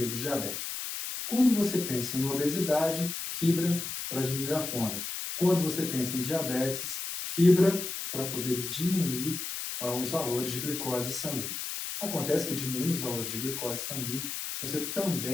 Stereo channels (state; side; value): noise; left; hiss, 5 dB below the sound